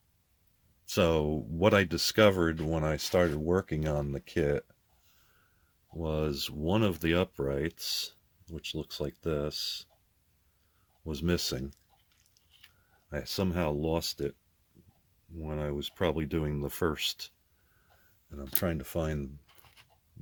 so what I discovered when I started working on the kit was one of the uprights, which looks like this, was missing. I somehow lost it when I was probably doing the first, and I'm trying to find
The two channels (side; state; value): both; identical; correlation 1.00